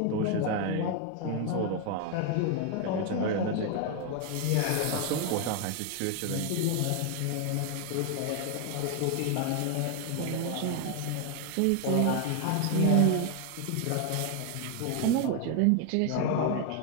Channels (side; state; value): both; different; correlation 0.01